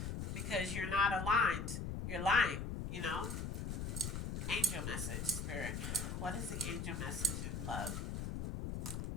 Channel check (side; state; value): left; noise; rumble, 3 dB below the sound